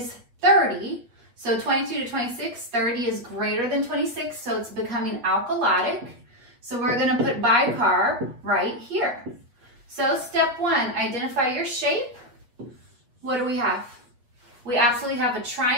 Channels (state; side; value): late; left; 8.1 ms